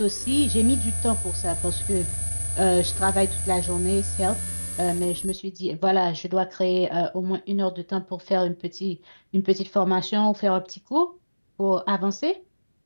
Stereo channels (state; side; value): inverted; both; correlation -1.00